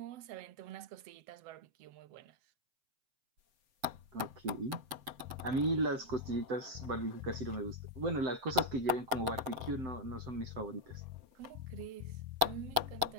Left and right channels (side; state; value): left; late; 7.8 ms